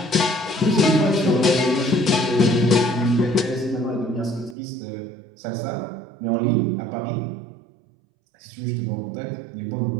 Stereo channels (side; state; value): left; drops out; at 4.5 s